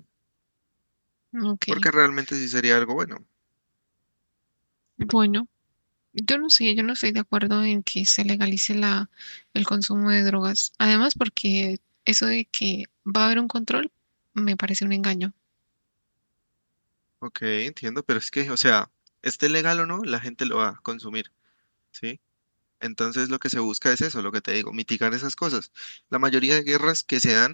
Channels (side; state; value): both; inverted; correlation -1.00